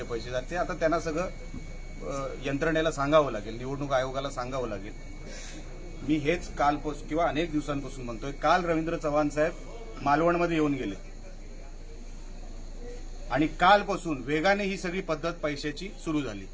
पैसे जाते। आता त्यांना सगळं यंत्रणेला सांगावं लागेल, निवडणूक आयोगाला सांगावं लागेल। मी हेच कालपासून किंवा अनेक दिवसांपासून म्हणतोय। काल रवींद्र चव्हाण साहेब मालवणमध्ये येऊन गेले आणि कालपासून वेगाने ही सगळी पद्धत पैशाची सुरू झाली।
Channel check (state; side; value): identical; both; correlation 1.00